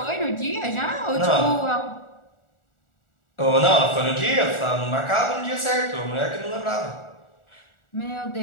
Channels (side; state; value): right; late; 1.4 ms